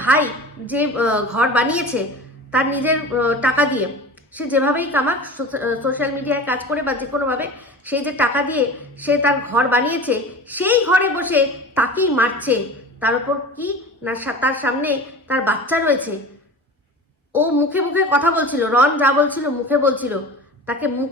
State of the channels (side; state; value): both; normal; correlation 0.35